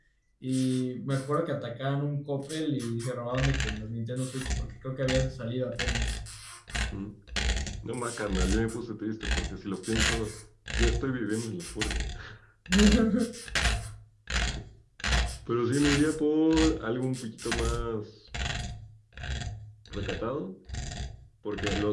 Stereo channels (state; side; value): identical; both; correlation 1.00